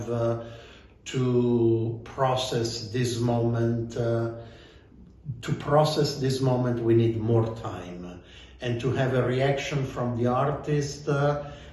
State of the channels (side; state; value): both; identical; correlation 1.00